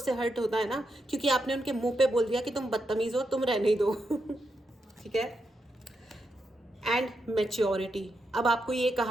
हर्ट होता है ना, क्योंकि आपने उनके मुंह पे बोल दिया कि तुम बदतमीज हो, तुम रहने ही दो ठीक है। एंड मैच्योरिटी, अब आपको ये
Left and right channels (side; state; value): both; normal; correlation 0.84